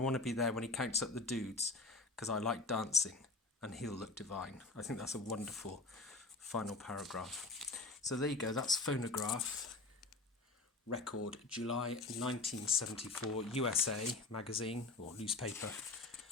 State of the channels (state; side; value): quieter; right; 3.4 dB